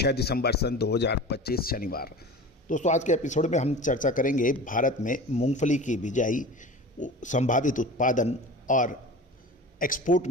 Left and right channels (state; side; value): normal; both; correlation 0.36